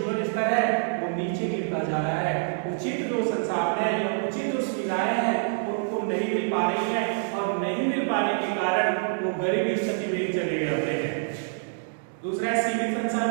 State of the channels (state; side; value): silent; left; digital silence